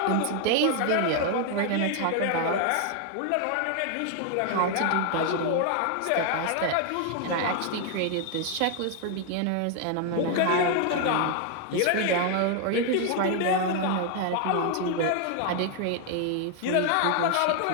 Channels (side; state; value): both; different; correlation 0.00